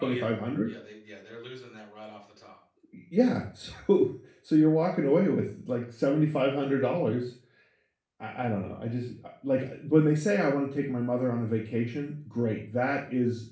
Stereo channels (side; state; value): both; identical; correlation 1.00